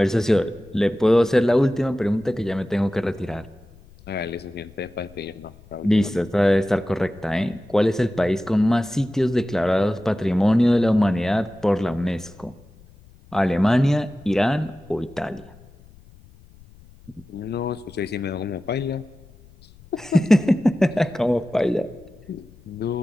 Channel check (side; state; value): left; noise; rumble, 25 dB below the sound